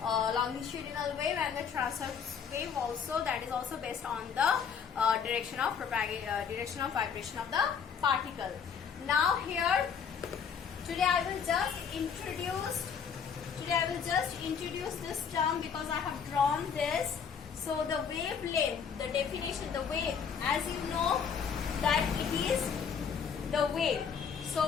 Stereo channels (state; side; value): quieter; right; 6.9 dB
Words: longitudinal wave and the transverse wave also, that is also based on the direction of vibration of the particle. Now here, today I will just introduce this term because I have drawn this. So the wavelength, the definition, the wave, as you know that it is the wave.